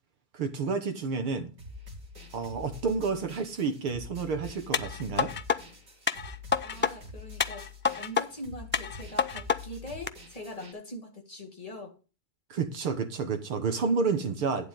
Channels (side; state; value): left; late; 2.3 ms